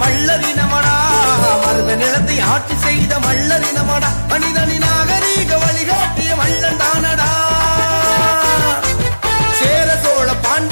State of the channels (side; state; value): both; inverted; correlation -1.00